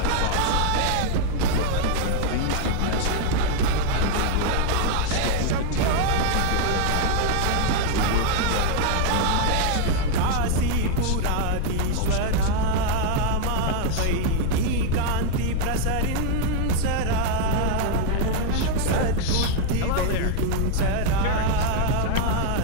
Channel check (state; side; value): different; both; correlation 0.00